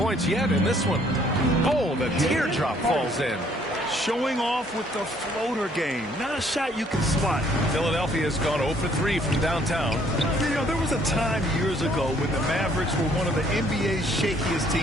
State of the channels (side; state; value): both; normal; correlation 0.63